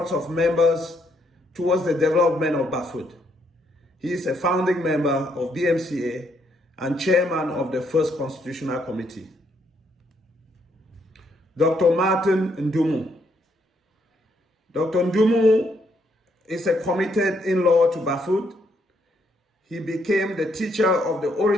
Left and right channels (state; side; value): normal; both; correlation 0.73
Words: of members towards the development of Bafut. He is a founding member of BMCA and chairman of the first Constitutional Committee. Dr. Martin Ndumu. Dr. Ndumu is a committed in-law to Bafut. He became the teacher of the